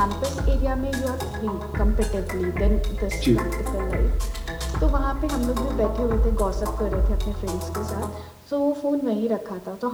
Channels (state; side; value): identical; both; correlation 1.00